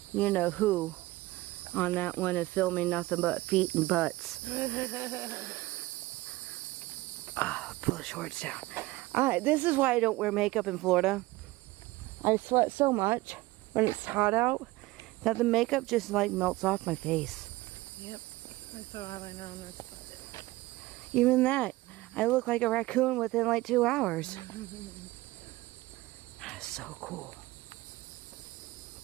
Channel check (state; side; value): quieter; left; 19.6 dB